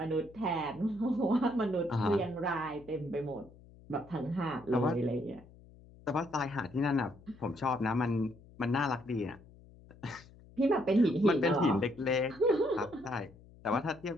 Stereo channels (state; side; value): noise; left; hum, 23 dB below the sound